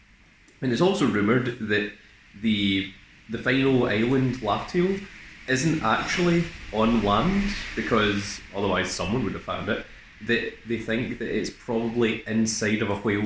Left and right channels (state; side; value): identical; both; correlation 1.00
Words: And it's also rumoured that the final island, Laugh-Tale, isn't actually on land, because otherwise someone would have found it. That they think that it's probably inside of a